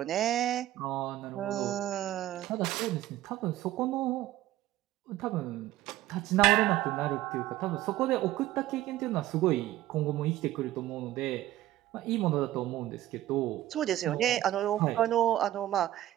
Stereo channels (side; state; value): left; quieter; 14.5 dB